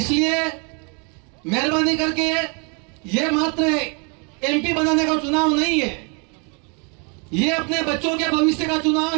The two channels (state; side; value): quieter; left; 35.1 dB